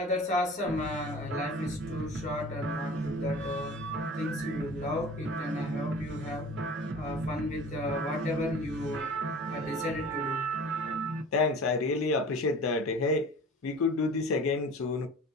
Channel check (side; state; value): both; normal; correlation 0.42